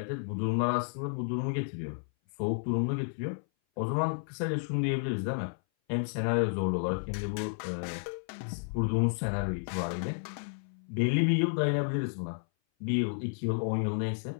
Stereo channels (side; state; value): right; silent; 57 dB below the other